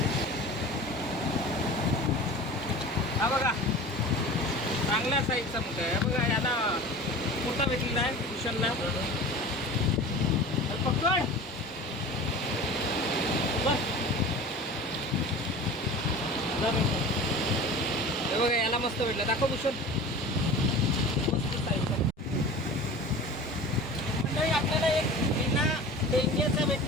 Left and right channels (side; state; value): both; normal; correlation 0.37